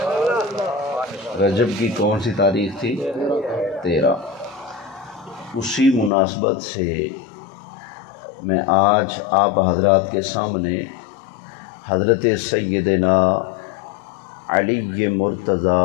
رجب کی کون سی تاریخ تھی؟ 13۔ اسی مناسبت سے میں آج آپ حضرات کے سامنے حضرت سیدنا علی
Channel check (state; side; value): drops out; right; at 6.1 s